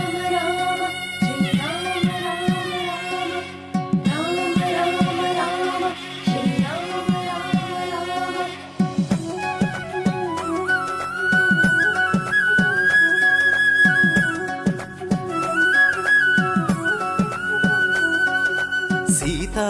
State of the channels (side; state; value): both; identical; correlation 1.00